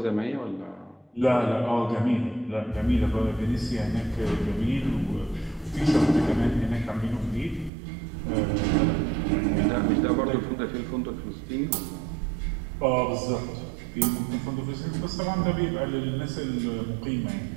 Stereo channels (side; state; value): left; drops out; at 7.7 s